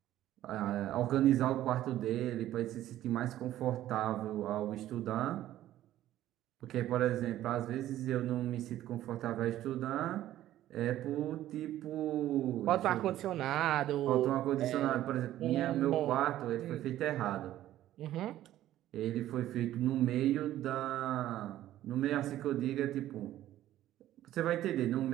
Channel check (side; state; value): left; quieter; 13.4 dB